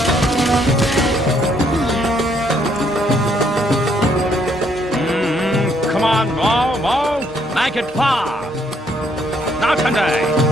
Come on, move. Make it fast. Not today.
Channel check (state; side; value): normal; both; correlation 0.69